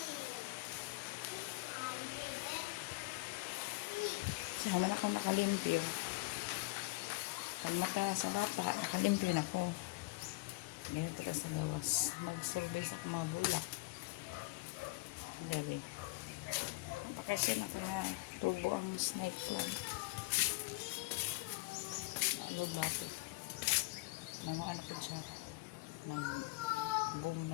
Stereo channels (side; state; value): right; quieter; 23.2 dB